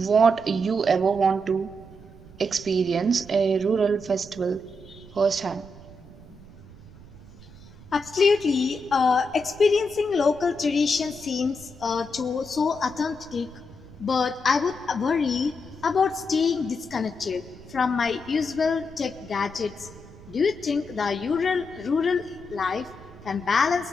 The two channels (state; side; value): noise; right; rumble, 19 dB below the sound